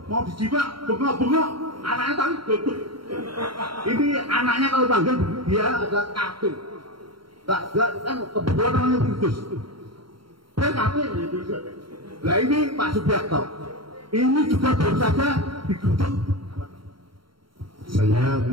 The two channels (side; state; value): left; late; 0.73 ms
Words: mau dijima, bengok-bengok, anaknya tadi bengok. Ini anaknya kalau panggil dia adalah kafir. Gak kan kebetulan namanya Kudus. Dia kafir. Nah ini Pak Subiakto, ini juga baru saja digeruduk. Saya